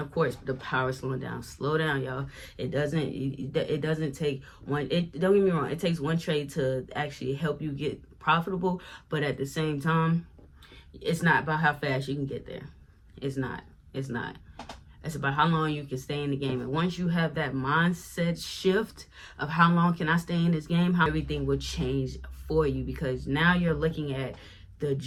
of course, the power of slowing down. Slow down, y'all. It doesn't take one. Don't get me wrong. It takes one trade to actually help you get profitable. But at the same time, it's not about how fast you can get there. It's not. It's about how long you can stay in the game. And once you have that mindset shift of how long can I stay in this game, how everything will change for you, because now you're looking at the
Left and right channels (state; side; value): identical; both; correlation 1.00